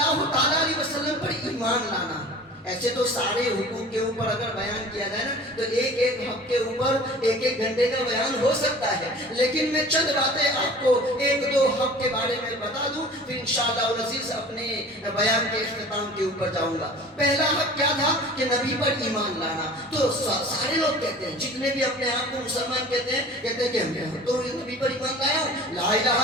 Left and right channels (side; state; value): both; normal; correlation 0.42